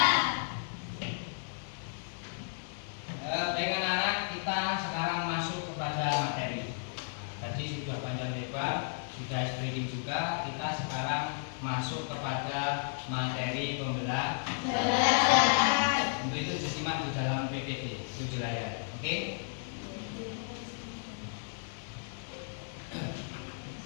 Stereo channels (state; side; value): silent; right; digital silence